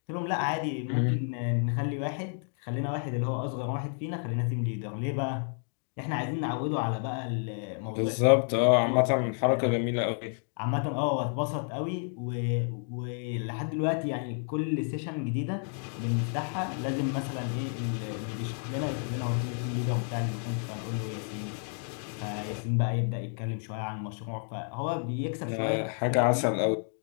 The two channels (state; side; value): silent; right; 56 dB below the other